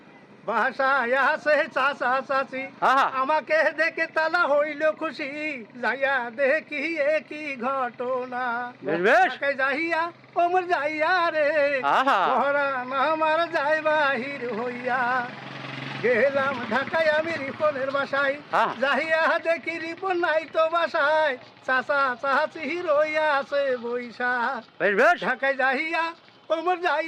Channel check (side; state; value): both; identical; correlation 1.00